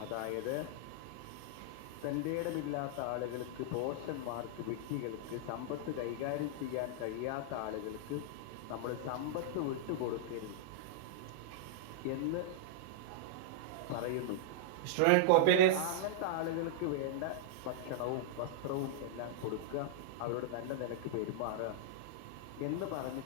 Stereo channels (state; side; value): different; both; correlation -0.02